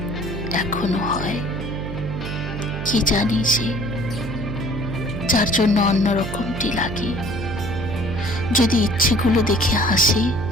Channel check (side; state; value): right; noise; hum, 7 dB below the sound